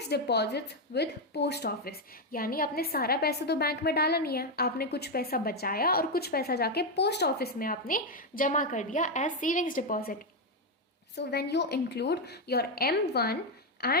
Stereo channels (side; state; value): both; normal; correlation 0.05